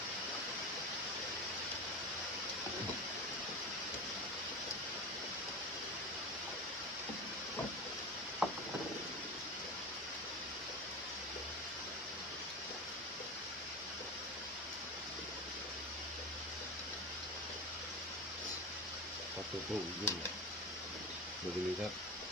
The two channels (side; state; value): both; normal; correlation 0.25